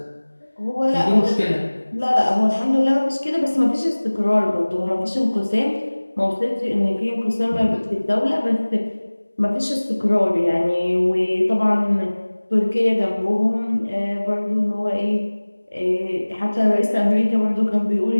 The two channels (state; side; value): inverted; both; correlation -1.00